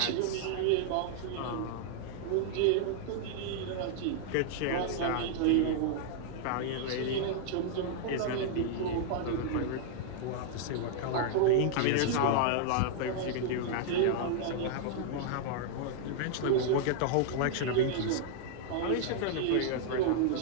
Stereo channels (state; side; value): different; both; correlation -0.01